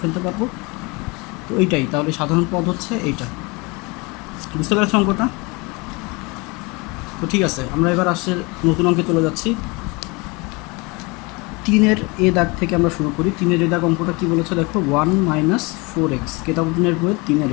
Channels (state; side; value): quieter; right; 27.0 dB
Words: ফেলতে পারবো। তো এইটাই তাহলে সাধারণ পদ হচ্ছে এইটা। বুঝতে পেরেছো অঙ্কটা? তো ঠিক আছে, আমরা এবার আসছে নতুন অঙ্কে চলে যাচ্ছি। 3-এর এ দাগ থেকে আমরা শুরু করি। 3-এর এ দাগ অঙ্কটা কী বলেছে দেখো, 1 - 4x, কিতাবুদ্দিনের বইয়ের 3-এর